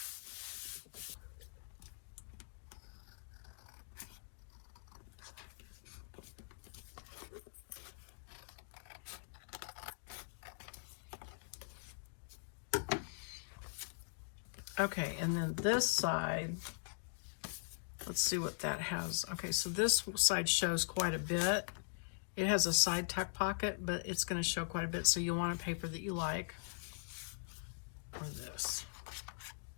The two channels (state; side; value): silent; right; digital silence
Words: okay, and then this side, let's see what that has. Okay, so this side shows quite a bit. It has a side tuck pocket, but it's going to show quite a bit, so you'll want a paper that you like. Or this.